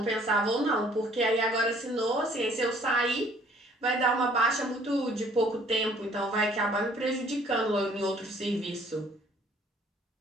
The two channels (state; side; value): normal; both; correlation 0.58